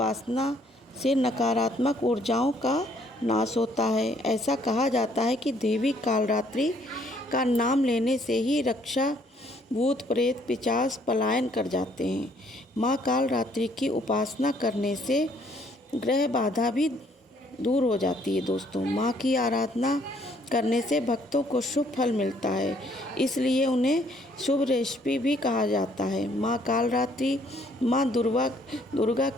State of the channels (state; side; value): normal; both; correlation 0.65